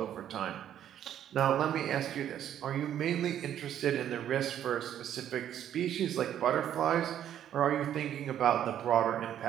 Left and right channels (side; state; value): left; quieter; 10.5 dB